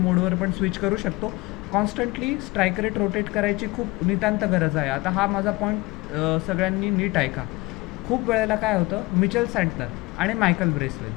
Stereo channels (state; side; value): quieter; right; 22.4 dB